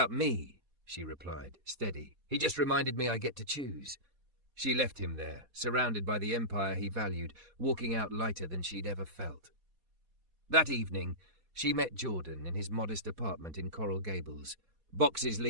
me," she replied, steady. "He just reminded me I get to choose." She left him there, surrounded by the empire he valued, walking out lighter than she'd ever felt. That evening, she met Jordan in his modest apartment in Coral Gables. Boxes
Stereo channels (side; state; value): left; late; 4.2 ms